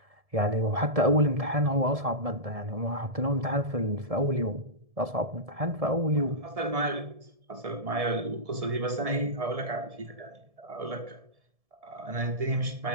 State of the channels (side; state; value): left; late; 1.7 ms